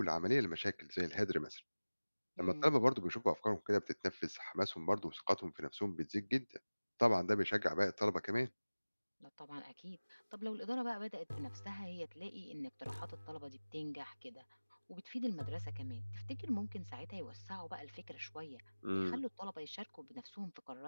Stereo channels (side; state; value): both; inverted; correlation -1.00